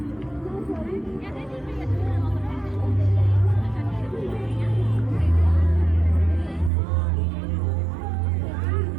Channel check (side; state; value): left; drops out; at 6.7 s